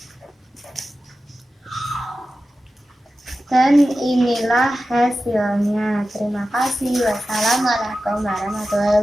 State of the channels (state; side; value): normal; both; correlation 0.93